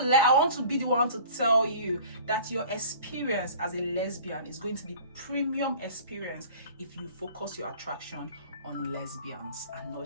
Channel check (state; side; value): inverted; both; correlation -0.45